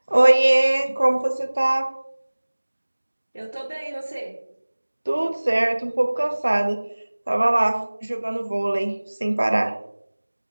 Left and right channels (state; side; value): inverted; both; correlation -1.00